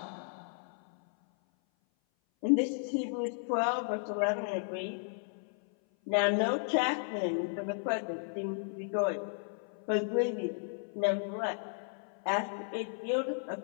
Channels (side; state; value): right; silent; 55 dB below the other